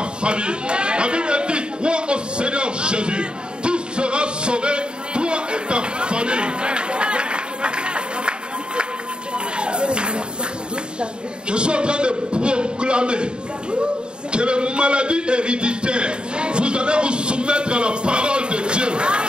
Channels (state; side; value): late; left; 0.050 ms